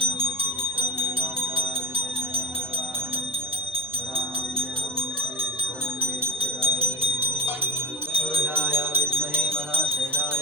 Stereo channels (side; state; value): both; normal; correlation 0.17